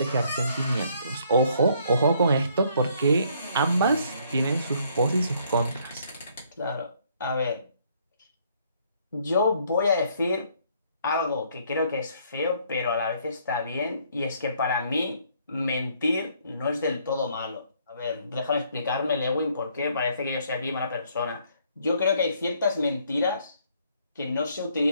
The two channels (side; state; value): both; inverted; correlation -0.66